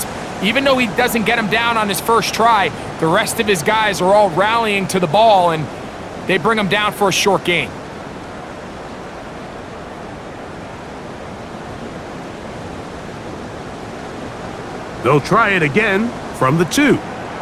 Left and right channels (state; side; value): identical; both; correlation 1.00